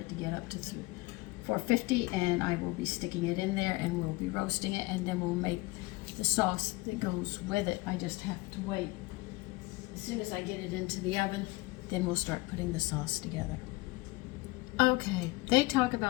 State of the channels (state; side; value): quieter; right; 22.2 dB